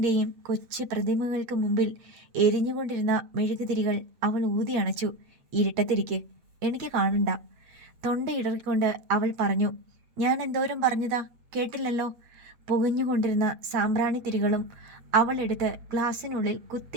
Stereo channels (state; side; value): late; left; 8.2 ms